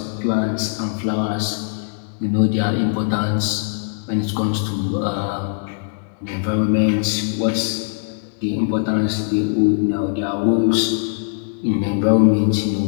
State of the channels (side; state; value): right; silent; digital silence